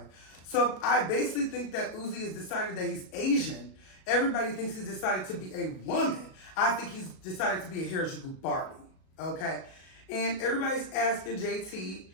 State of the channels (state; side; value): late; right; 37 ms